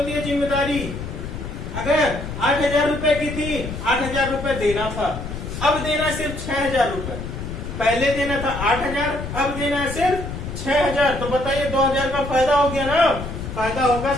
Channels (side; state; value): left; noise; rumble, 7 dB below the sound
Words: है जिम्मेदारी। अगर 8,000 रुपए की थी, 8,000 रुपए देना था, अब देना सिर्फ 6,000 रुपए। पहले देना था 8,000, अब देना है सिर्फ 6,000। तो बताइए 2,000 का फायदा हो गया ना। फायदा होगा